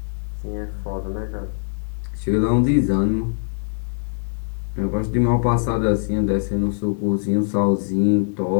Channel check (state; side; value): silent; right; digital silence